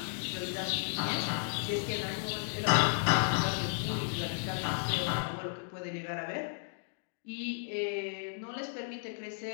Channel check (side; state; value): right; silent; digital silence